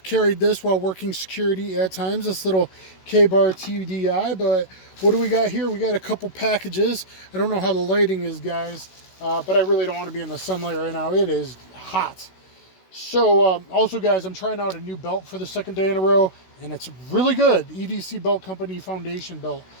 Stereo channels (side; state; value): right; late; 16 ms